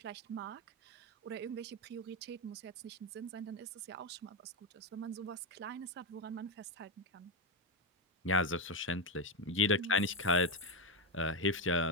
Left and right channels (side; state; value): both; normal; correlation 0.09